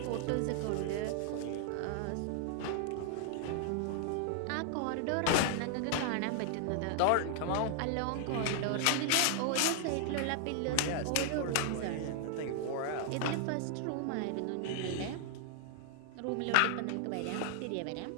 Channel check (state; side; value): different; both; correlation 0.00